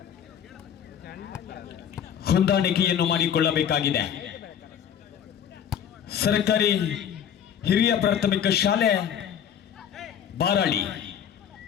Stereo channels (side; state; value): right; quieter; 8.9 dB